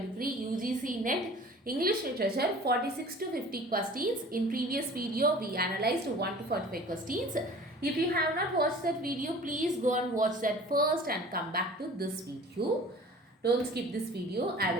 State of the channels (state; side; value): normal; both; correlation 0.45